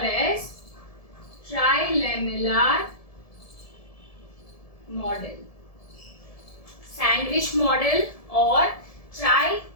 as trilamellar model. Sandwich model or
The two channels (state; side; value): late; right; 1.7 ms